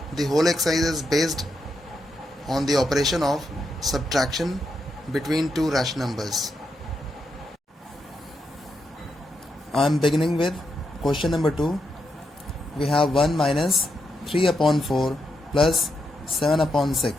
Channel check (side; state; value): both; normal; correlation 0.83